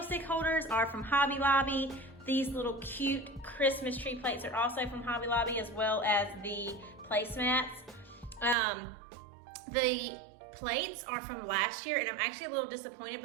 holders are from Hobby Lobby. These little cute Christmas tree plates are also from Hobby Lobby, as well as the placemats. The plates are from last year, and I'm actually a little disappointed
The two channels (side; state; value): left; drops out; at 8.6 s